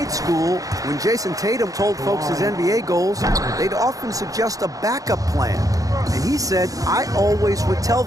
school, when Jason Tatum told folks his NBA goals, they'd often suggest a backup plan. And he said, I always would tell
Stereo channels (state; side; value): late; left; 0.17 ms